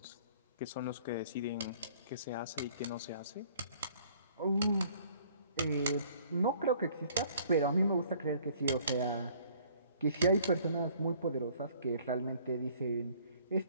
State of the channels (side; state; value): both; inverted; correlation -0.57